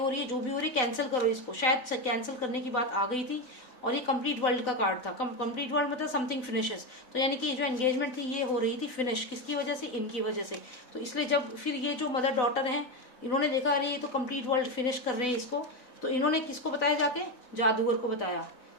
रही है, जो भी हो रही है, कैंसिल करो इसको। शायद कैंसिल करने की बात आ गई थी, और ये कंप्लीट वर्ल्ड का कार्ड था। कंप्लीट वर्ल्ड मतलब समथिंग फिनिशेस, तो यानी कि जो एंगेजमेंट थी ये हो रही थी फिनिश, किसकी वजह से, इनकी वजह से। तो इसलिए जब फिर ये जो मदर डॉटर हैं, इन्होंने देखा अरे ये तो कंप्लीट वर्ल्ड फिनिश कर रहे हैं इसको, तो इन्होंने किसको बताया, जाके जादूगर को बताया।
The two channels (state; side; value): late; right; 4.0 ms